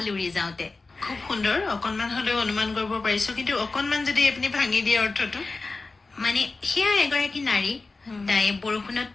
উৰি যাওঁতে খুব সুন্দৰ অকনমান হলেও অনুমান কৰিব পাৰিছো কিন্তু অকনমান যদি আপুনি ভাঙি দিয়ে অৰ্থটো মানে সেয়া এগৰাকী নাৰী তাই বৰষুণত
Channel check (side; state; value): right; quieter; 3.7 dB